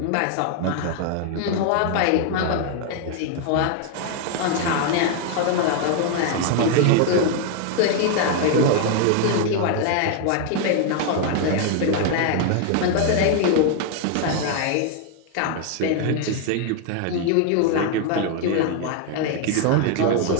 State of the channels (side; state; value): both; different; correlation 0.00